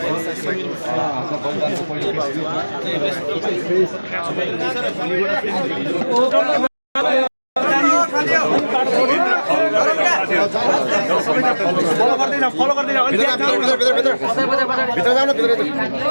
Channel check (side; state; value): both; inverted; correlation -1.00